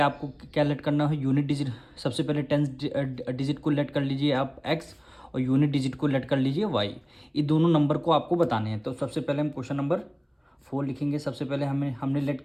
क्या लेट करना है? Unit digit. सबसे पहले टेंस डिजिट को लेट कर लीजिए आप x, और यूनिट डिजिट को लेट कर लीजिए y। ये दोनों नंबर को आपको बताने हैं। तो सबसे पहले हम क्वेश्चन नंबर 4 लिखेंगे। सबसे पहले हमने लेट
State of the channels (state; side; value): identical; both; correlation 1.00